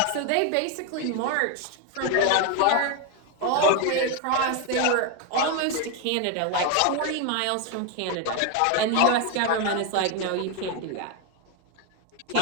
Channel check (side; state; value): both; different; correlation 0.01